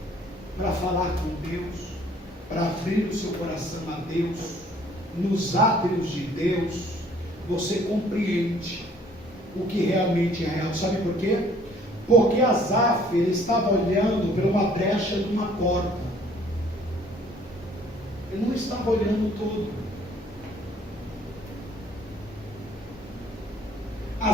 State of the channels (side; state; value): both; normal; correlation 0.58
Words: para falar com Deus, para abrir o seu coração a Deus, nos átrios de Deus, você compreende o que realmente é real. Sabe por quê? Porque Asaf, ele estava olhando para uma brecha de uma porta. Ele não estava olhando todo.